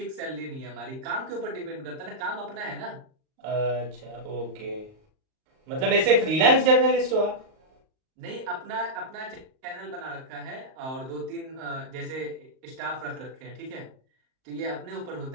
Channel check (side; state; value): left; late; 38 ms